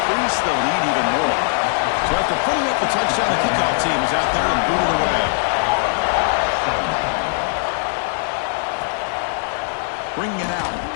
the lead even more. So after putting up the touchdown, the kickoff team is out there to boot it away. Bringing it out,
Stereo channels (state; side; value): silent; right; 57 dB below the other